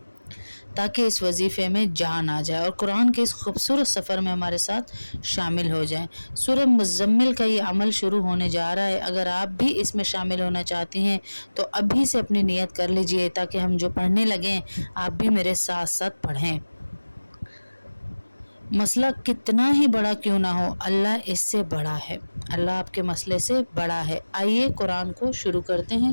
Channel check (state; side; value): inverted; both; correlation -1.00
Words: تاکہ اس وظیفے میں جان آ جائے اور قرآن کے اس خوبصورت سفر میں ہمارے ساتھ شامل ہو جائیں۔ سورہ مزمل کا یہ عمل شروع ہونے جا رہا ہے۔ اگر آپ بھی اس میں شامل ہونا چاہتی ہیں تو ابھی سے اپنی نیت کر لیجئے تاکہ ہم جو پڑھنے لگیں آپ بھی میرے ساتھ ساتھ پڑھیں۔ مسئلہ کتنا ہی بڑا کیوں نہ ہو، اللہ اس سے بڑا ہے، اللہ آپ کے مسئلے سے بڑا ہے۔ آئیے قرآن کو شروع کرتے ہیں،